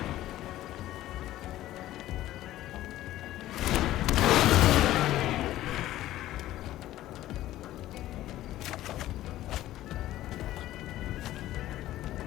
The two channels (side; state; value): right; quieter; 14.5 dB